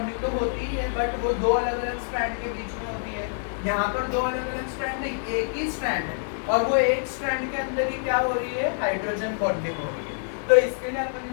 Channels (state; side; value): silent; right; digital silence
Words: तो होती ही है बट वो 2 अलग-अलग स्ट्रैंड के बीच में होती है। यहाँ पर 2 अलग-अलग स्ट्रैंड नहीं, एक ही स्ट्रैंड है और वो एक स्ट्रैंड के अंदर ही क्या हो रही है? हाइड्रोजन बॉन्डिंग हो रही है। तो इसके लिए अपन